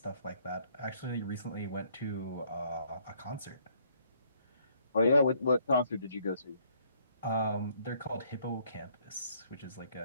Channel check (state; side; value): inverted; both; correlation -0.66